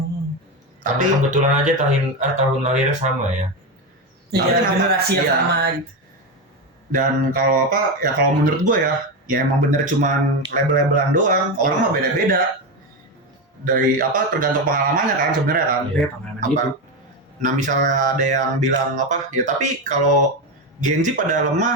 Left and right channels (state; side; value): normal; both; correlation 0.14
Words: Tapi Tapi kebetulan aja tahun lahirnya sama ya. Iya, kenapa? generasi yang Iya. sama gitu. dan kalau apa ya kalau menurut gue ya emang bener cuman label-labelan doang. Orang mah beda-beda. Dari apa tergantung pengalamannya kan sebenarnya kan. Iya, pengalaman Apa? hidup. Nah misalnya ada yang bilang apa ya, tapi kalau Gen Z pada